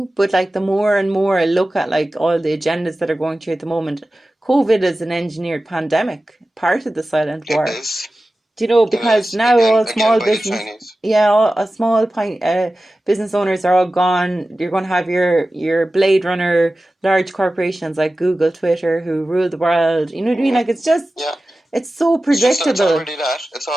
But like, the more and more I look at like all the agendas that are going through at the moment, COVID is an engineered pandemic, part of the silent war. It is. Do you know, because now all small business, all small business owners are all gone. You're going to have your Blade Runner large corporations like Google, Twitter, who rule the world. You know what I mean? Like, it's just, it's so predictable. It's already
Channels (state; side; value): normal; both; correlation 0.95